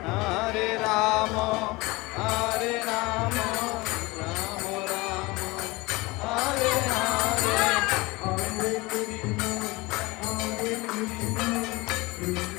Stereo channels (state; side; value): quieter; right; 23.1 dB